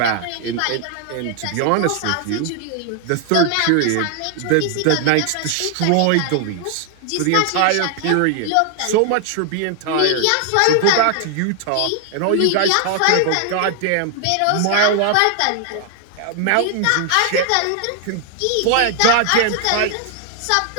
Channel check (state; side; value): different; both; correlation 0.00